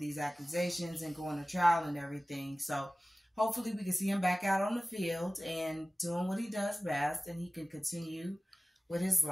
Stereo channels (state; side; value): normal; both; correlation 0.97